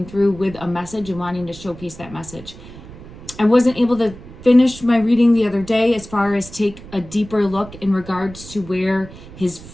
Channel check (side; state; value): right; noise; rumble, 17 dB below the sound